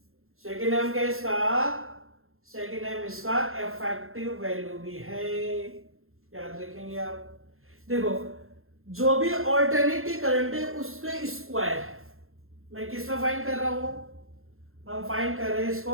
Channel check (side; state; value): left; late; 0.61 ms